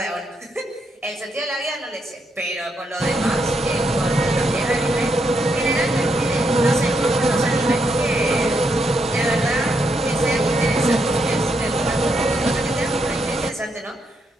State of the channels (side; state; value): both; normal; correlation 0.79